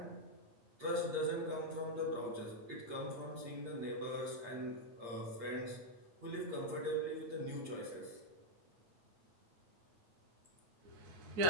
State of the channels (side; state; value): left; late; 8.6 ms